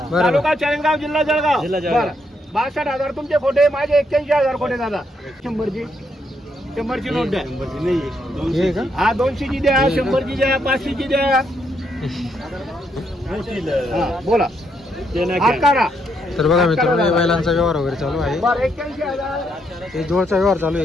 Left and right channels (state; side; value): normal; both; correlation 0.76